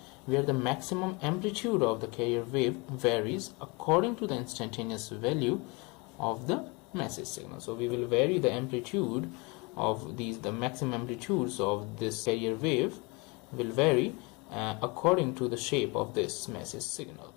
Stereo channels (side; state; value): right; quieter; 28.2 dB